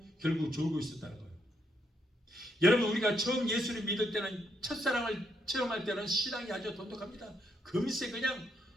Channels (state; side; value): normal; both; correlation 0.77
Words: 결국 졸고 있었다는 거예요. 여러분, 우리가 처음 예수를 믿을 때는, 첫사랑을 체험할 때는 신앙이 아주 돈독합니다. 금세 그냥